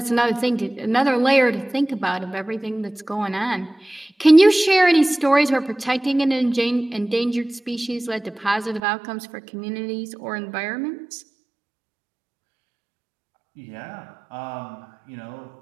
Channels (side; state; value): left; drops out; at 8.8 s